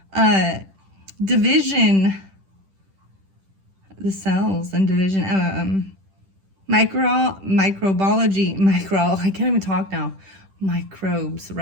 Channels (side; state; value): left; late; 10 ms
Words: division, the cells and division, microbiology, I can't even talk now, microbes,